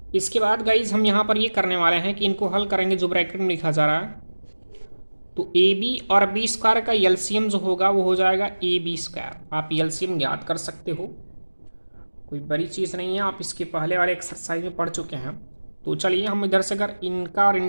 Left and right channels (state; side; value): inverted; both; correlation -1.00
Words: इसके बाद गाइज हम यहाँ पर ये करने वाले हैं कि इनको हल करेंगे, जो ब्रैकेट में लिखा जा रहा है, तो ab और b² का एलसीएम जो होगा वो हो जाएगा ab²। आप एलसीएम ज्ञात कर सकते हो, कोई बड़ी चीज़ नहीं है, आप इसके पहले वाले एक्सरसाइज में पढ़ चुके हैं। तो चलिए हम इधर से अगर इनका और